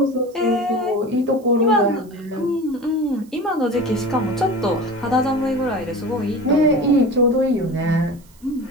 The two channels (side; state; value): right; noise; hiss, 29 dB below the sound